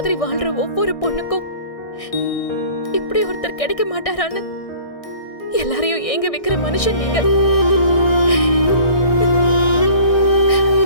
வாழ்ற ஒவ்வொரு பொண்ணுக்கும் இப்படி ஒருத்தர் கிடைக்க மாட்டாரான்னு எல்லாரையும் ஏங்க வைக்கிற மனுஷன் நீங்க.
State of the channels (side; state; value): right; late; 1.6 ms